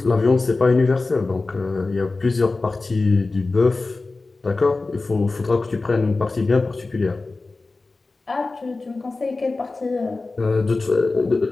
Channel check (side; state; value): right; quieter; 3.5 dB